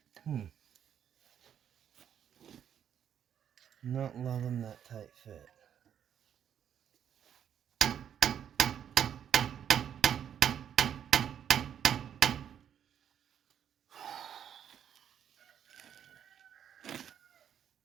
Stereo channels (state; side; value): quieter; left; 9.1 dB